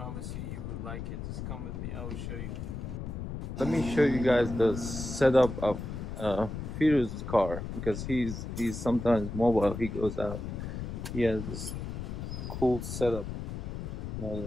you will like it. Just come with me, I will show you. Let me show you guys the setup of Firu's car, because he's sometimes mobile. He goes out. He has this cool setup.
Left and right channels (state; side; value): noise; left; rumble, 6 dB below the sound